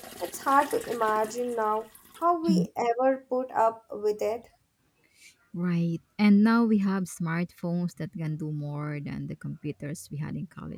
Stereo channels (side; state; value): both; identical; correlation 1.00